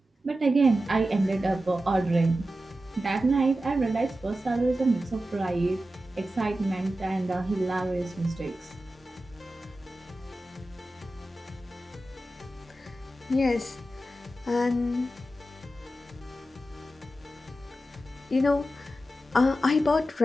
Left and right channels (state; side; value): normal; both; correlation 0.92